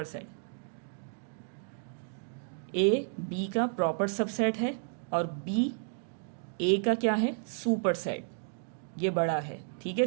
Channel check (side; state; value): left; silent; 56 dB below the other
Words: सेट। ए बी का प्रॉपर सबसेट है और बी ए का क्या है, सुपर सेट, ये बड़ा है। ठीक है,